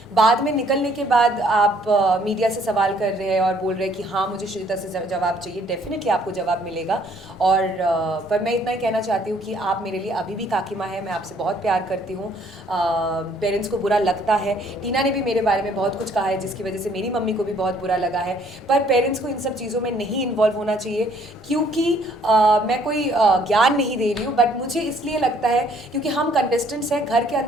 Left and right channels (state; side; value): normal; both; correlation 0.62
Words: बाद में निकलने के बाद आप मीडिया से सवाल कर रहे हैं और बोल रहे हैं कि हाँ मुझे श्रीजिता से जवाब चाहिए। डेफिनेटली आपको जवाब मिलेगा। और पर मैं इतना ही कहना चाहती हूँ कि आप मेरे लिए अभी भी काकी माँ है, मैं आपसे बहुत प्यार करती हूँ। पेरेंट्स को बुरा लगता है, टीना ने भी मेरे बारे में बहुत कुछ कहा है जिसकी वजह से मेरी मम्मी को भी बहुत बुरा लगा है, पर पेरेंट्स को इन सब चीज़ों में नहीं इन्वॉल्व होना चाहिए। क्योंकि मैं कोई ज्ञान नहीं दे रही हूँ, बट मुझे इसलिए लगता है क्योंकि हम कंटेस्टेंट्स हैं, घर के